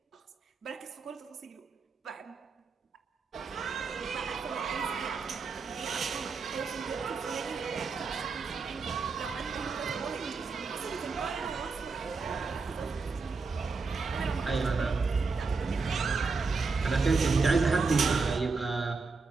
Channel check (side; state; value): left; quieter; 4.4 dB